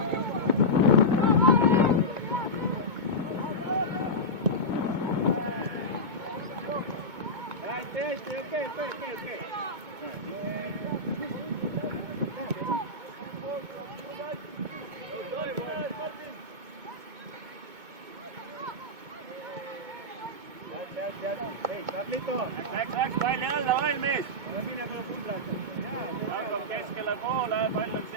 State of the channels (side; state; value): left; late; 2.2 ms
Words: Läks palli alla, valmis! Hakkab keskele poole, pall on